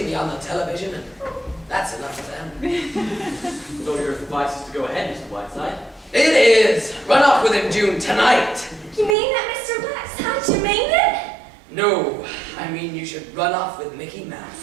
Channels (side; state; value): left; drops out; at 9.2 s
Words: see on the television, and that's enough for them. So your advice is to go ahead, Mr. Whiteside? It is! Run off with him, June, tonight! You mean that, Mr. Blackside? You mean it? No, I mean you should run off with Mickey